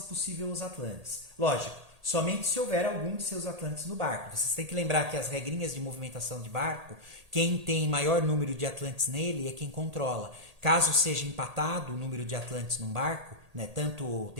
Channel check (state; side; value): late; left; 1.8 ms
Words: possível, os atlantes. Lógico, somente se houver algum de seus atlantes no barco. Vocês têm que lembrar que as regrinhas de movimentação de barco, quem tem maior número de atlantes nele é quem controla. Caso seja empatado o número de atlantes num barco, né, tanto